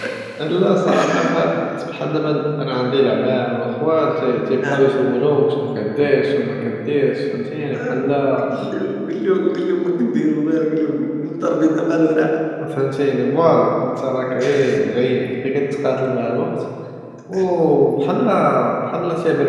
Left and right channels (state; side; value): identical; both; correlation 1.00